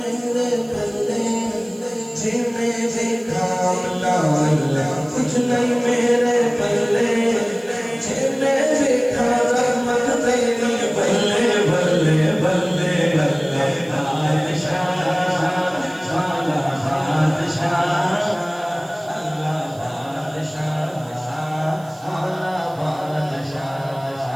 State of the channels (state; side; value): noise; right; hiss, 25 dB below the sound